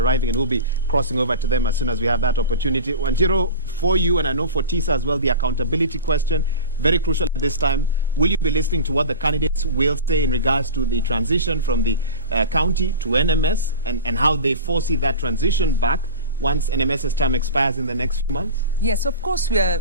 and we'll be crossing over to them as soon as we have that opportunity. Wanjiro, for you, and I know for Tisa as well, the accountability question, very crucial at this time. Will you be listening to what the candidates will say in regards to the transition from the county to NMS, and how they foresee that transition back once NMS's term expires in the next few months? Yes, of course, we are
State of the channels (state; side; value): inverted; both; correlation -0.31